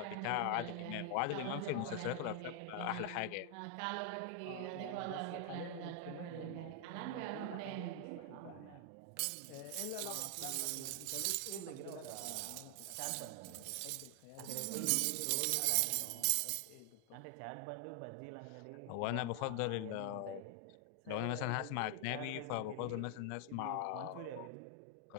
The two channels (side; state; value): both; different; correlation 0.00